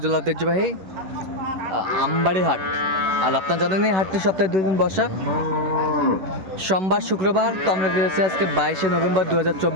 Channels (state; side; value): late; left; 11 ms